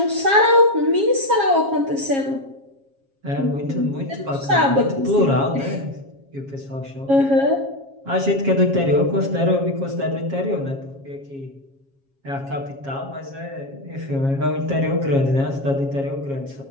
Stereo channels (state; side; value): late; left; 7.3 ms